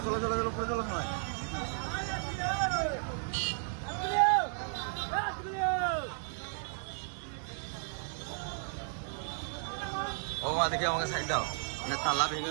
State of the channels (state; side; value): silent; left; 55 dB below the other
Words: উপরে চলো সবাই। ও দেখে আমাকে সাইড দাও, তালা ভেঙে